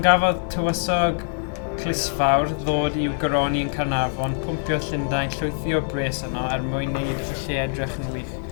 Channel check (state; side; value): silent; right; digital silence